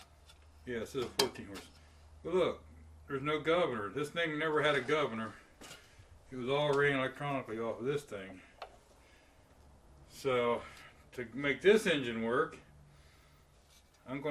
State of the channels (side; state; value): both; identical; correlation 1.00